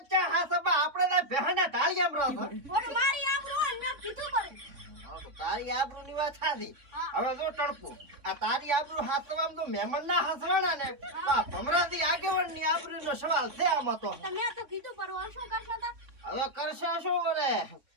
ચા હા સબા આપણે ના ભેના ટાળિયામ રહો. ઓર મારી આબરૂ ને મેં કીધું પડે. તારી આબરૂ ની વાત થાતી. હવે જો ટણપુ આ તારી આબરૂ હાસવામ તો મહેમાન ના હાસવાના ને આ ભમરાથી આગેવાન ની આબરૂ નો સવાલ છે આમાં તો. તમે તો કીધું પરવા શું કરશો તા? હવે કરશે શું કરે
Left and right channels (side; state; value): left; late; 3.6 ms